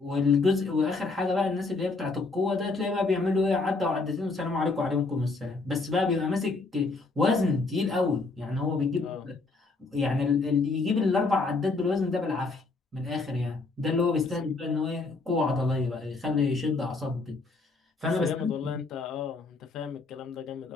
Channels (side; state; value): right; quieter; 3.7 dB